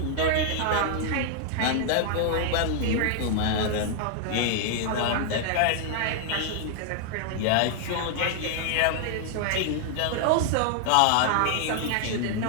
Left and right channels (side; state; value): both; different; correlation 0.00